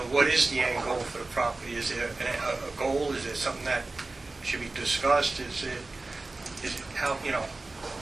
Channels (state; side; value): quieter; left; 3.3 dB